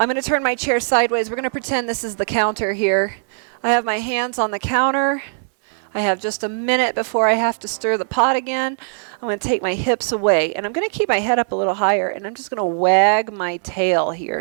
going to turn my chair sideways. We're going to pretend this is the counter here. I have my hands on the counter. I have just a minute before I have to stir the pot again. I'm going to take my hips away, and I'm going to keep my head up a little higher, and I'm just going to wag my tail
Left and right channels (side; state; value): left; silent; 62 dB below the other